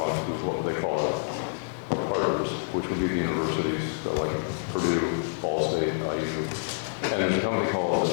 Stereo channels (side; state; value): right; silent; 60 dB below the other